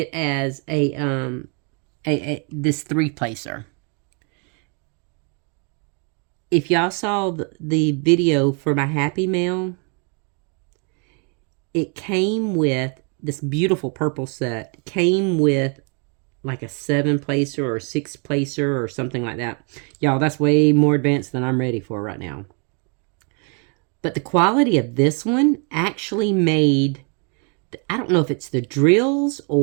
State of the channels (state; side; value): quieter; left; 37.3 dB